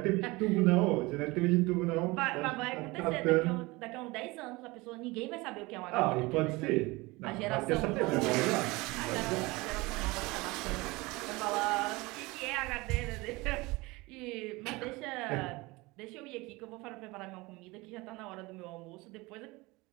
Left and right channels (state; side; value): quieter; left; 23.0 dB